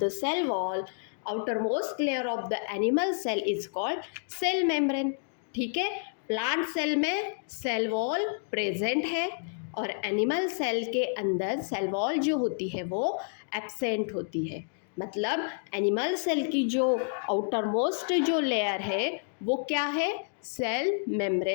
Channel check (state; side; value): silent; right; digital silence